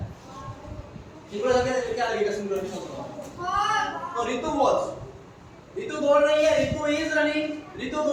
सिंगुलर के क्या लगेगा सिंगुलर के साथ? तो रितु वाज, रितु दौड़ रही है, रितु इज रनिंग, रितु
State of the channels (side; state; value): both; identical; correlation 1.00